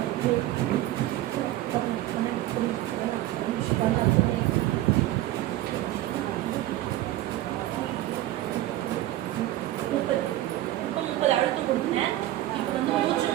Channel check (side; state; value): left; quieter; 15.2 dB